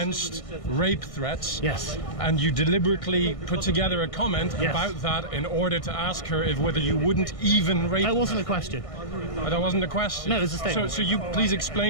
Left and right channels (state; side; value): late; right; 1.6 ms